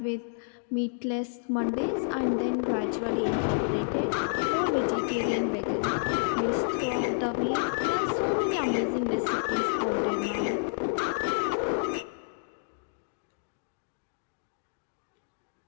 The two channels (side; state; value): right; silent; digital silence